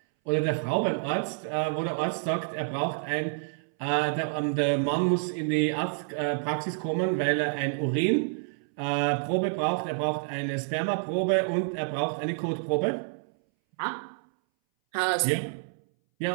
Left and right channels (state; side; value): silent; left; 59 dB below the other